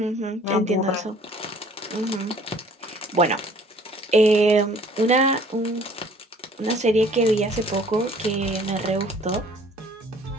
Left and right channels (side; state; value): both; normal; correlation 0.55